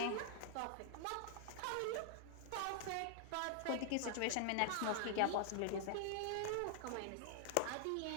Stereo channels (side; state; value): both; different; correlation -0.01